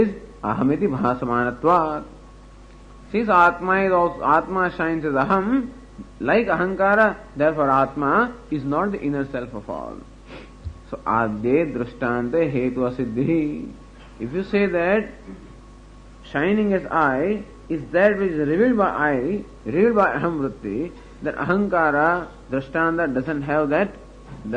is Ahamiti Bhasamanatvat. Since Atma shines as Aham, like Ahankara, therefore Atma is not the inner self of all. So Adye Drishtante Hetu Asiddhi. If you say that shining as I is that which is revealed by I, revealed by Aham Vritti, that Ahankara, Drishtanta doesn't have that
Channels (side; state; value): both; identical; correlation 1.00